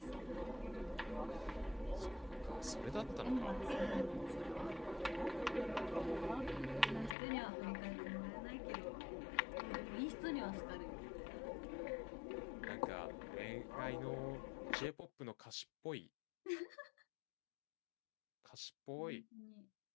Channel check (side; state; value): right; drops out; at 7.2 s